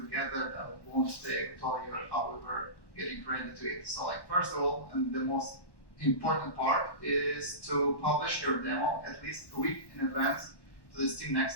gathered. I won't tell you how we were getting ready to it. So, like, first of all, and the most important part is to publish your demo at least a week in advance to the Steam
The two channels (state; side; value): late; right; 1.1 ms